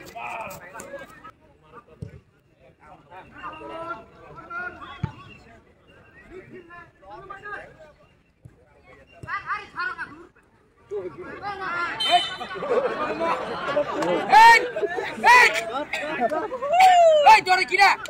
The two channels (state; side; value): identical; both; correlation 1.00